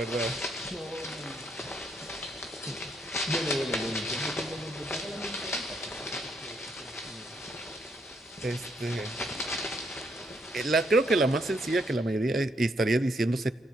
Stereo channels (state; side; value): normal; both; correlation 0.73